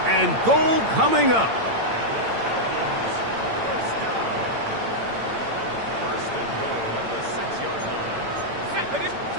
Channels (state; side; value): late; left; 8.8 ms